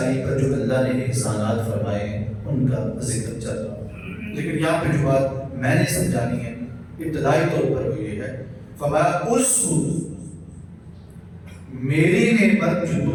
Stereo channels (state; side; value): identical; both; correlation 1.00